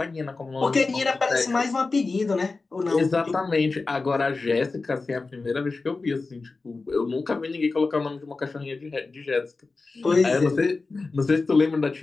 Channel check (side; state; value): right; quieter; 3.8 dB